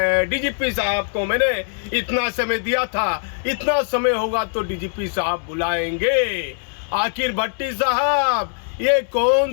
डीजीपी साहब को मैंने इतना समय दिया था, इतना समय होगा तो डीजीपी साहब बुलाएंगे। आखिर भट्टी साहब, ये कौन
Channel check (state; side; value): silent; right; digital silence